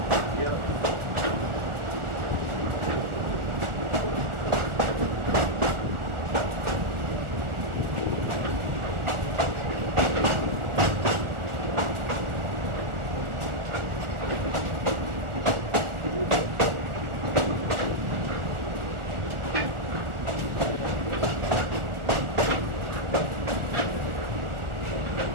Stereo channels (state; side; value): late; left; 1.4 ms